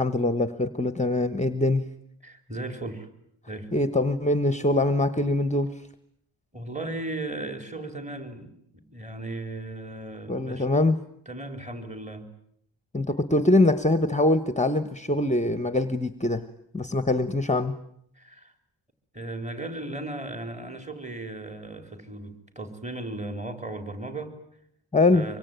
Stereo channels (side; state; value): both; normal; correlation 0.50